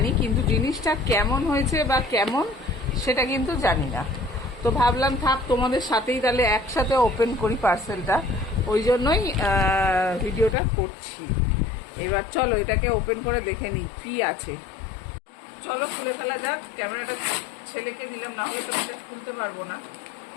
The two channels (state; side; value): drops out; right; at 10.6 s